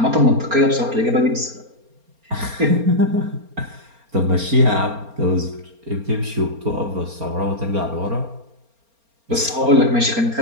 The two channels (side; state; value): left; late; 4.3 ms